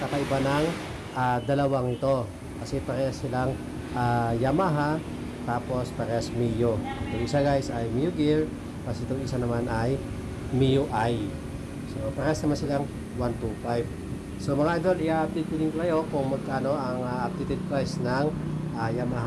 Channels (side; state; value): both; identical; correlation 1.00